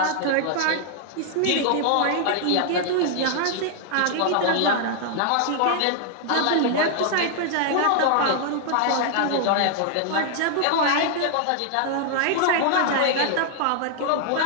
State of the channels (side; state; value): both; different; correlation -0.01